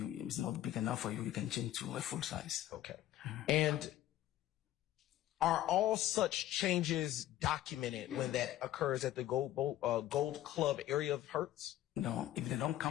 it's not big enough for you, you can change to a full size. Okay. And are all such changes documented when that occurs at the Gold Club area of Hertz? No, if they don't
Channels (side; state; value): right; quieter; 13.6 dB